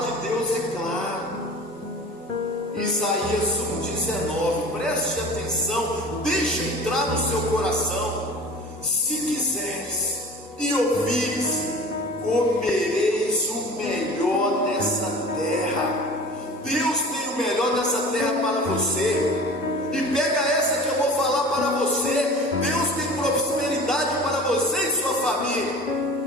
de Deus é clara. Isaías 1,19, preste atenção, deixa entrar no seu coração. Se quiseres e ouvires, comereis o melhor dessa terra. Deus tem o melhor dessa terra para você. E pega essa que eu vou falar para você. Deus tem prosperidade para você e sua família.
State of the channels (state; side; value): normal; both; correlation 0.40